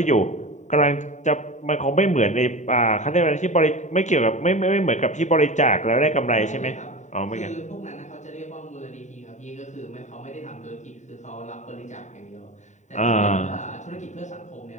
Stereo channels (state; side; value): late; right; 0.34 ms